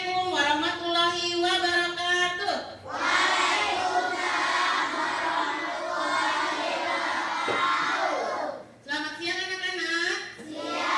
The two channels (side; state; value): both; identical; correlation 1.00